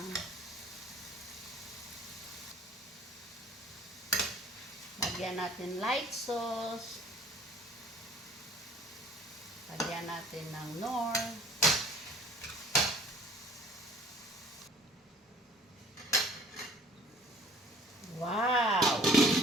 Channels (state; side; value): normal; both; correlation 0.53